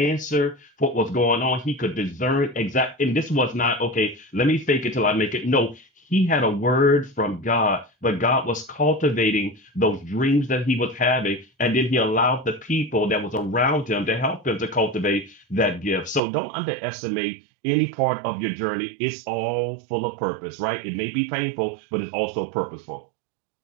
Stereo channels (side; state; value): left; drops out; at 16.2 s